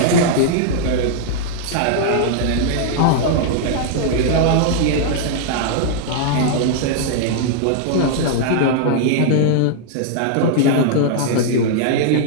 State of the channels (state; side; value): different; both; correlation -0.01